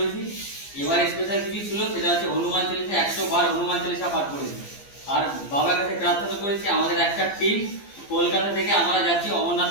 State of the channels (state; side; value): late; right; 15 ms